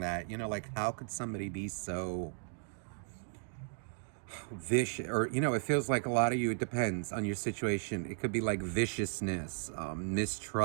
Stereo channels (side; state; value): left; silent; 54 dB below the other